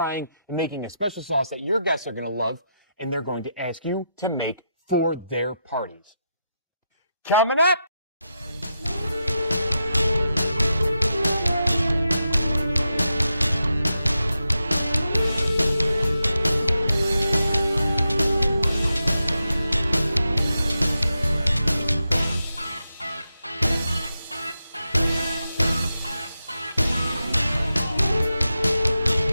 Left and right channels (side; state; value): both; inverted; correlation -0.87